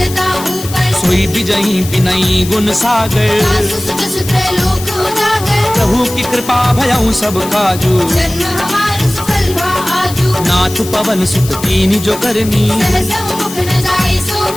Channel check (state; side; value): noise; left; hiss, 12 dB below the sound